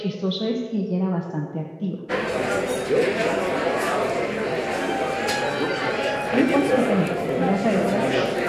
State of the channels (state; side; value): identical; both; correlation 1.00